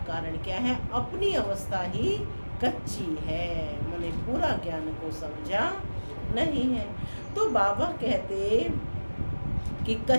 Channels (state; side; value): inverted; both; correlation -1.00